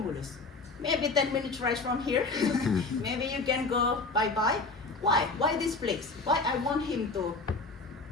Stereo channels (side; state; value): right; quieter; 3.7 dB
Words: Maybe 10 minutes ride from here. Maybe you can go bye-bye. Why? Why this place? Why I want him to